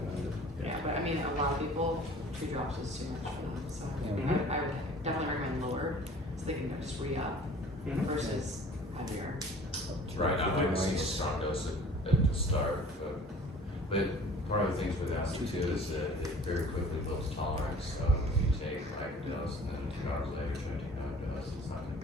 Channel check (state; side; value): normal; both; correlation 0.47